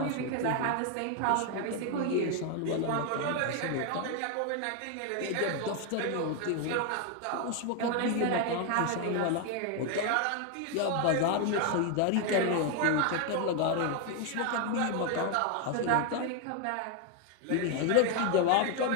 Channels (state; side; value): different; both; correlation 0.01